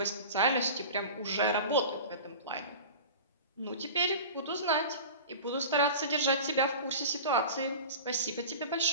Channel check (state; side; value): inverted; both; correlation -0.35